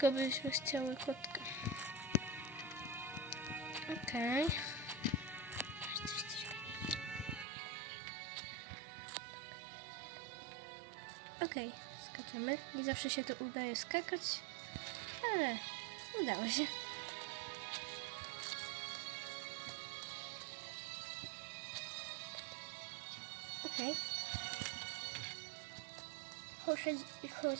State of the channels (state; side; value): drops out; left; at 7.5 s